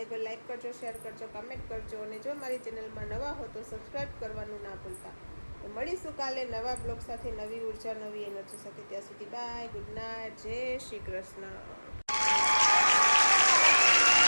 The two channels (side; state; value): both; inverted; correlation -1.00